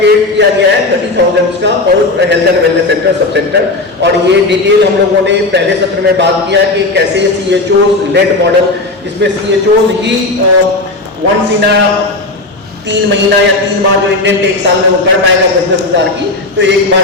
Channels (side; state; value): right; quieter; 3.0 dB